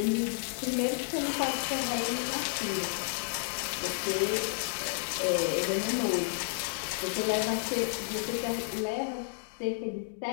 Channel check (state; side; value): silent; right; digital silence